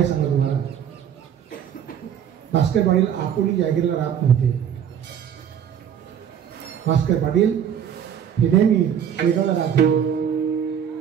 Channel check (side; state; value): left; quieter; 8.8 dB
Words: सांगत तुम्हाला. भास्कर पाटील आपोली जागीरला राहत नव्हते. भास्कर पाटील हे नेहमी शेगावला राहत होते.